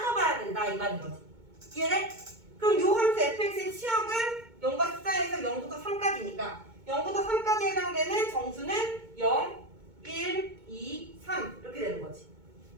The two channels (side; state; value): left; late; 2.2 ms